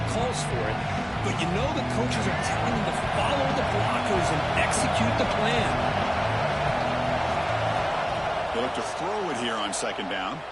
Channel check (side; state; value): both; identical; correlation 1.00